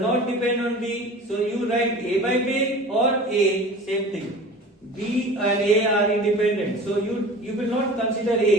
not depend on B, so you write A by B or A, same thing. B and A are independent, so you will not consider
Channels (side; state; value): both; normal; correlation 0.39